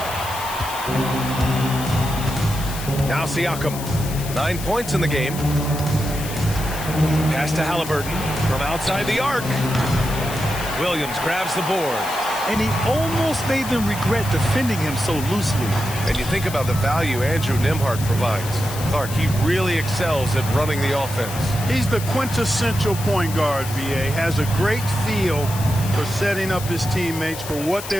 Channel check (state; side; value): noise; left; hiss, 11 dB below the sound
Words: Now Siakam. 9 points in the game. Pass to Halliburton from outside the arc. Williams grabs the board. And he almost made them regret defending him so loosely. And you think about the value Andrew Nembhard provides. Clark, he really excels at running the offense. He's the quintessential point guard, VA. Has a great feel for setting up his teammates for what